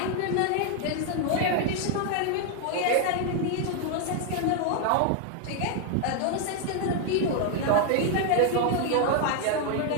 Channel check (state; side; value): different; both; correlation 0.01